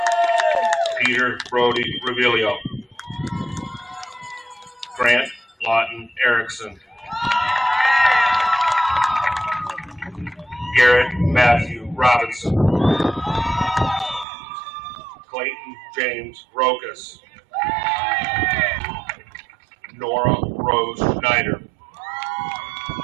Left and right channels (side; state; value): left; drops out; at 14.2 s